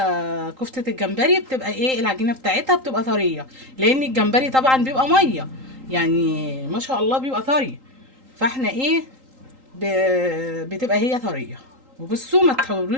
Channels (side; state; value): left; late; 3.8 ms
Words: كفتة الجمبري بتبقى ايه، العجينة بتاعتها بتبقى طرية، لان الجمبري طبعا بيبقى مية يعني ما شاء الله بيبقى طري. فاحنا ايه بتبقى هي طرية. وبصوا ما